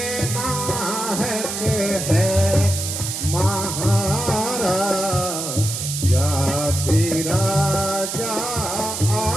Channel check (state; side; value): noise; right; hiss, 4 dB below the sound